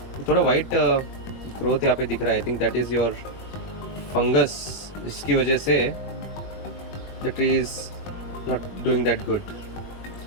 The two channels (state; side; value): late; right; 21 ms